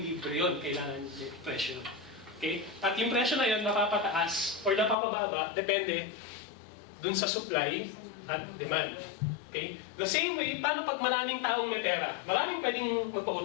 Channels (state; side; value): drops out; right; at 5.0 s